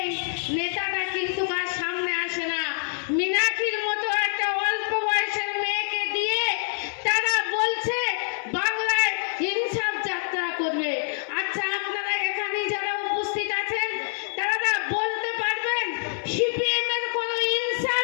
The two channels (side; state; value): right; silent; 56 dB below the other